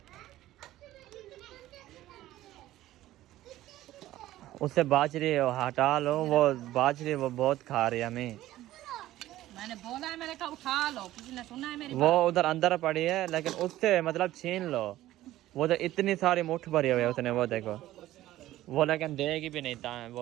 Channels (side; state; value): left; quieter; 14.9 dB